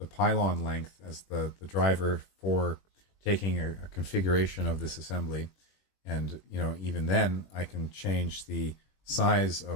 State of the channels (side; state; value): right; late; 21 ms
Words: pylon length as the driver for taking a configuration of this assembly. And even then I can change the size